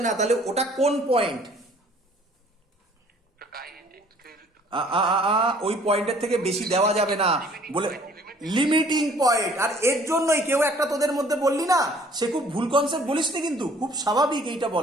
না, তাহলে ওটা কোন পয়েন্ট? ওই পয়েন্টের থেকে বেশি দেওয়া যাবে না বলে লিমিটিং পয়েন্ট। আর এর জন্যই কেউ একটা তোদের মধ্যে বললি না, সে খুব ভুল কনসেপ্ট বলিস নি, কিন্তু খুব স্বাভাবিক এইটা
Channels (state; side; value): normal; both; correlation 0.56